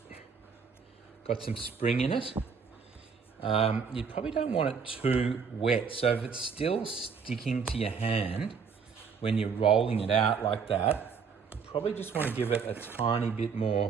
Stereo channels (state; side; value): quieter; left; 5.9 dB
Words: got some spring in it. You probably don't want it too wet. So if it's still sticking to your hand when you're rolling it out like that, you probably just want to give it a tiny bit